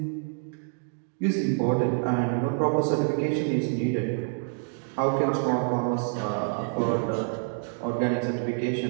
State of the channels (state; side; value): silent; left; 56 dB below the other